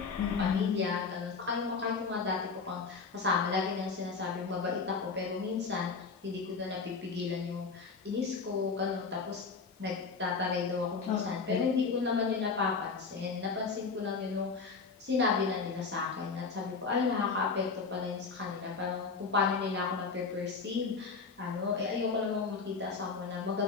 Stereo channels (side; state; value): right; quieter; 4.9 dB